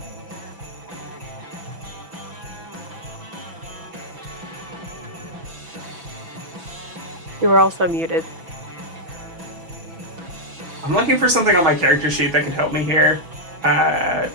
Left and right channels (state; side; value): late; left; 6.0 ms